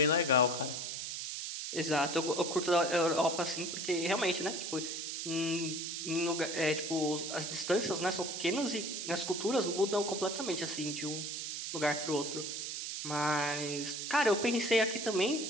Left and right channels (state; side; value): noise; right; hiss, 4 dB below the sound